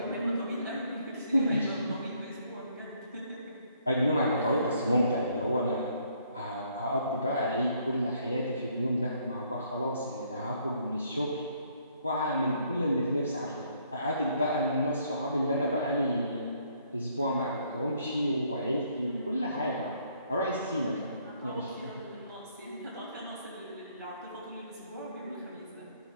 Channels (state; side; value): inverted; both; correlation -0.67